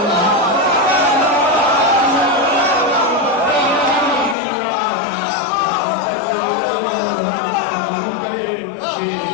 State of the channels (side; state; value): right; drops out; at 4.4 s